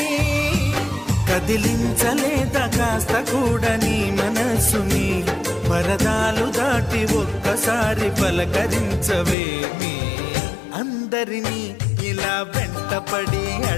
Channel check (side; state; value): right; drops out; at 9.3 s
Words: కదిలించలేదా కాస్త కూడా నీ మనసుని పరదాలు దాటి ఒక్కసారి పలకరించవేమి అందరినీ ఇలా వెంటపడి